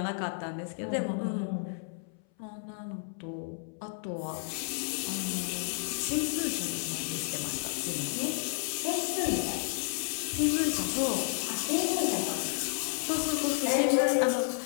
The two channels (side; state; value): right; silent; 57 dB below the other